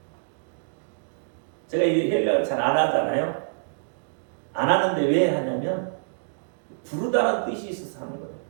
제가 이 헬라어를 잘 안 하잖아요. 안 하는데 왜 하냐면 부르다는 뜻이 있어서 하는 거예요.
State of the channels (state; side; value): silent; left; digital silence